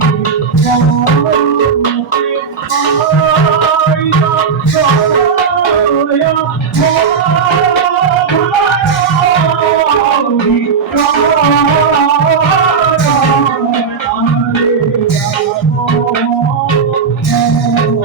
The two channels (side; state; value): left; quieter; 5.9 dB